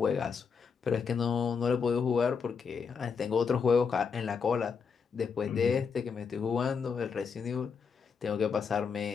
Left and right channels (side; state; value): right; quieter; 5.9 dB